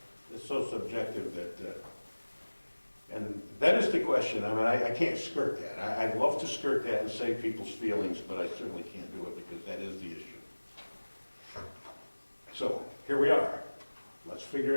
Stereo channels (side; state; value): both; inverted; correlation -1.00